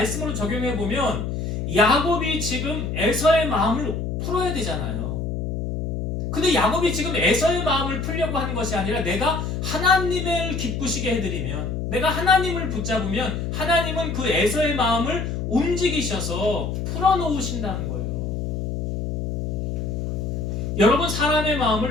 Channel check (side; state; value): left; noise; hum, 3 dB below the sound